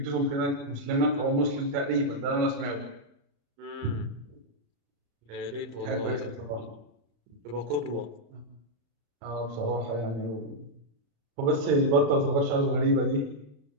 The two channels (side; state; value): left; late; 35 ms